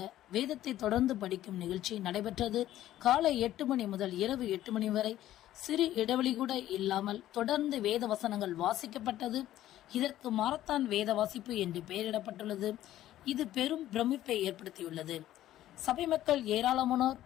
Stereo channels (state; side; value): quieter; right; 13.4 dB